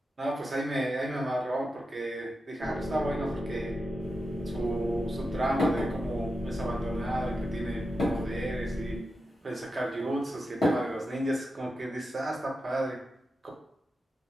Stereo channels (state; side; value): normal; both; correlation 0.89